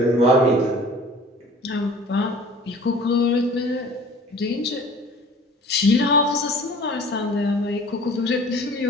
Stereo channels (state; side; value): normal; both; correlation 0.46